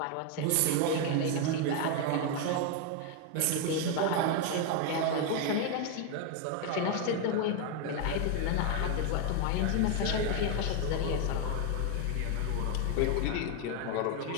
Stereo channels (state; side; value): different; both; correlation 0.01